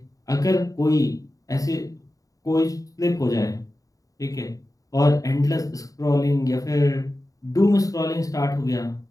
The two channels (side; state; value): right; late; 0.17 ms